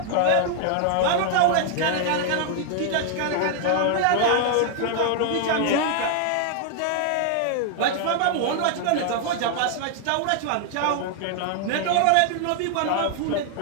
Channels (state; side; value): different; both; correlation 0.00